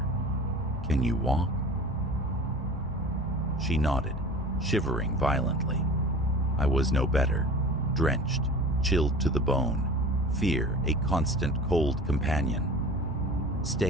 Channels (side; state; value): both; normal; correlation 0.38